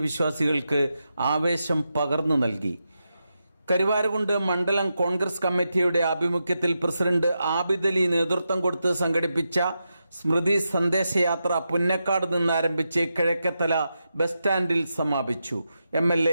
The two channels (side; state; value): both; inverted; correlation -0.87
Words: വിശ്വാസികൾക്ക് ആവേശം പകർന്നു നൽകി. കരുവാരകുണ്ട് മണ്ഡലം കോൺഗ്രസ് കമ്മിറ്റിയുടെ ആഭിമുഖ്യത്തിൽ പ്രസിഡന്റ് ആബിദ് അലി നേതൃത്വം കൊടുത്ത് സംഘടിപ്പിച്ച സ്മൃതി സന്ദേശയാത്ര പുന്നക്കാട് നിന്ന് ആരംഭിച്ച് കിഴക്കേത്തല ബസ് സ്റ്റാൻഡിൽ സമാപിച്ചു.